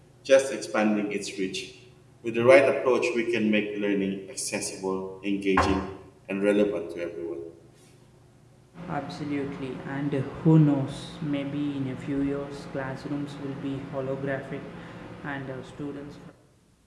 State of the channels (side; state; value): both; identical; correlation 1.00